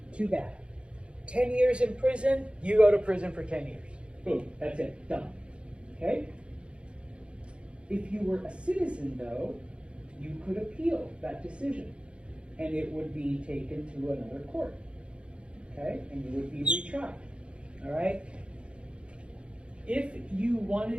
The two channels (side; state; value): left; late; 0.058 ms